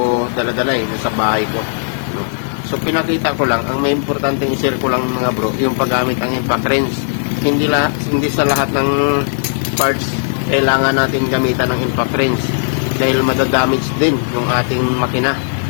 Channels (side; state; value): right; silent; digital silence